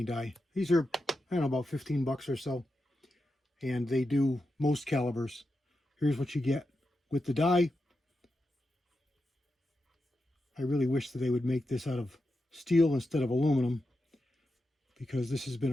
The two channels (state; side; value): normal; both; correlation 0.88